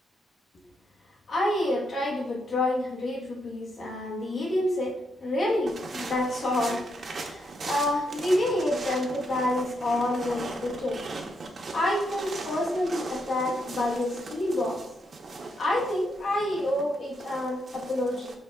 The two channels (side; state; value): both; normal; correlation 0.79